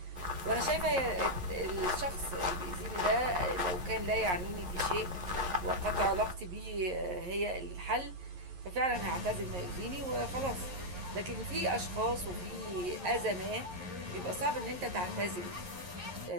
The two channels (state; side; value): late; left; 11 ms